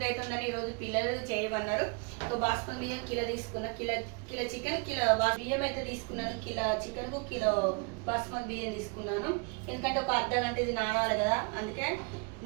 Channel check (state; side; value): quieter; left; 33.2 dB